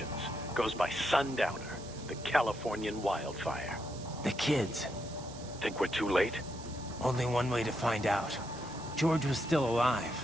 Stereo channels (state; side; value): noise; right; hiss, 17 dB below the sound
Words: goes by Sundowner, the Californian wildfire. The kids. Think we're too late? Only one way to find out. George was still